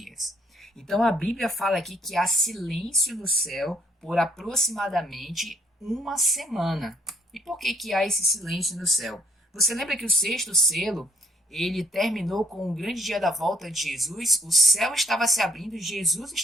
Então, a Bíblia fala aqui que há silêncio no céu por aproximadamente uma semana. E por que há esse silêncio no céu? Você lembra que o sexto selo ele terminou com o grande dia da volta de Jesus, o céu estava se abrindo e Jesus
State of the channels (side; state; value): both; normal; correlation 0.66